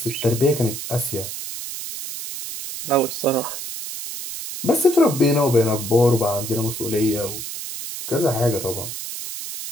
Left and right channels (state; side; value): noise; right; hiss, 8 dB below the sound